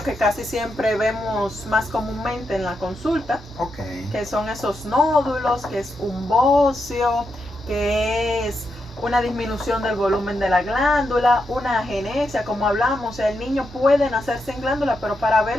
que casi siempre vemos más comúnmente en la consulta, que son esos nódulos, que es un bocio, que es una disminución del volumen de la glándula, una agenesia, como hablamos. O sea, el niño puede nacer sin glándula, pero para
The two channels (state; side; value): normal; both; correlation 0.84